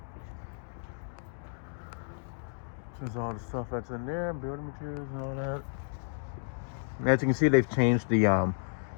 There's all the stuff that's in there, building materials and all that. As you can see, they've changed the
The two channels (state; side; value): silent; right; digital silence